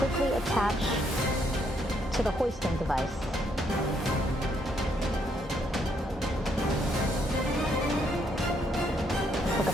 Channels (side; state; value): both; normal; correlation 0.72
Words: attach to the hoisting device. Look at